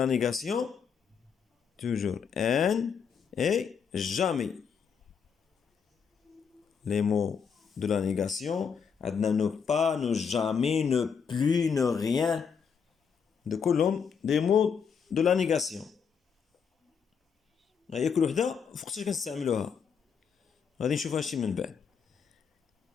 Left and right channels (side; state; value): right; quieter; 6.6 dB